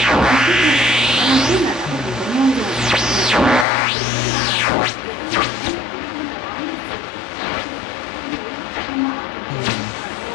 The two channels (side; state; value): right; drops out; at 3.7 s